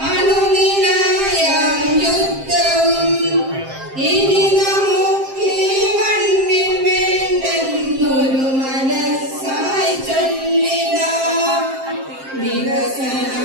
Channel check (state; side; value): late; left; 7.6 ms